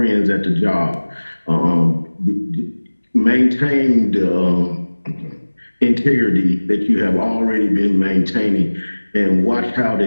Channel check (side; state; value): both; inverted; correlation -1.00